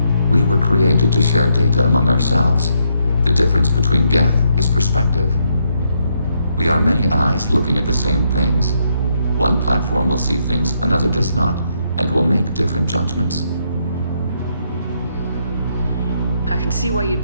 We were created to share data among ourselves. The difference between Geth is perspective. We are many eyes looking at the same things. One platform will see things another does not, and will make different judgments. I can see why you'd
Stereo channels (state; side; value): inverted; both; correlation -0.76